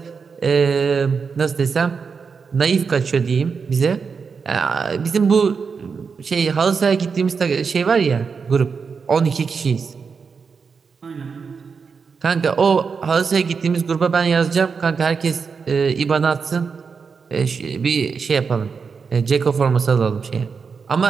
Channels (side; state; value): left; quieter; 5.5 dB